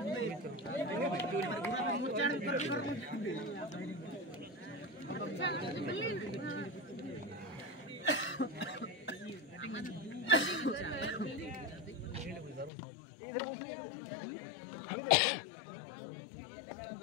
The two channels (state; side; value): drops out; right; at 12.7 s